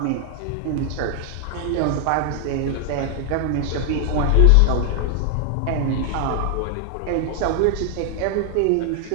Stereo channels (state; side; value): different; both; correlation 0.00